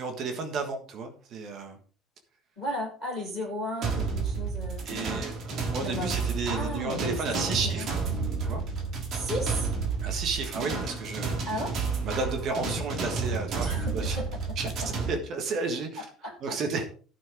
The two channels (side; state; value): left; quieter; 3.4 dB